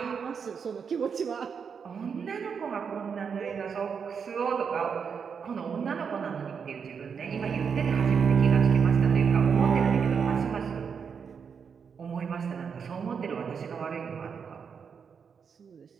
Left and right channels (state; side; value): quieter; left; 6.5 dB